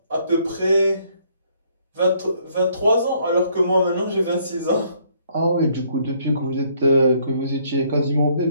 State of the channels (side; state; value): both; inverted; correlation -0.67